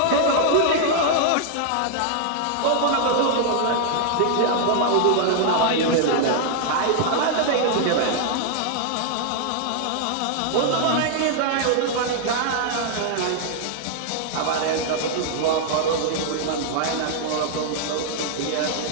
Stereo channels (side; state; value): both; different; correlation 0.00